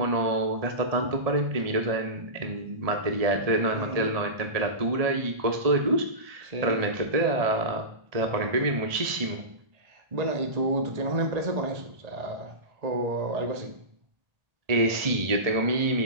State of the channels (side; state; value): left; late; 1.7 ms